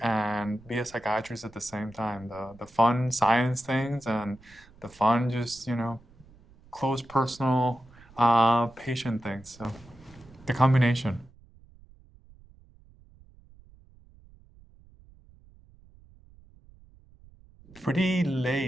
and be a psychiatrist at the same time. The fun science things and the fun just, close personal patient things. So the combination. Pretty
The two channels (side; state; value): right; noise; rumble, 25 dB below the sound